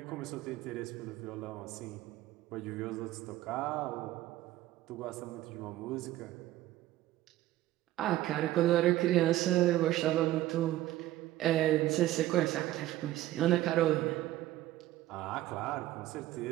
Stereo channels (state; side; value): quieter; left; 15.1 dB